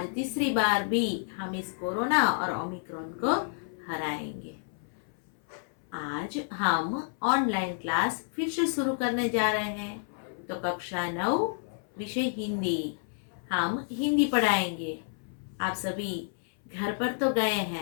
तीसरी बार भी हम इस कोरोना और ओमिक्रॉन को हराएंगे। आज हम ऑनलाइन क्लास फिर से शुरू करने जा रहे हैं। तो कक्षा 9 विषय हिंदी, हम हिंदी पढ़ाएंगे। आप सभी घर पर तो गए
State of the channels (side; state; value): right; silent; 58 dB below the other